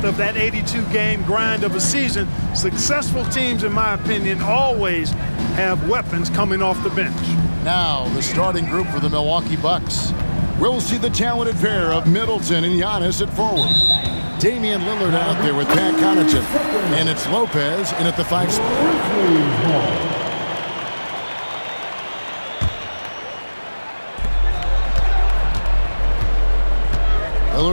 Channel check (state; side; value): inverted; both; correlation -1.00